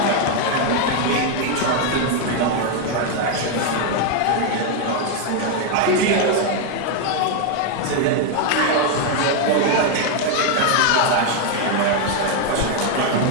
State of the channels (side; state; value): both; different; correlation 0.01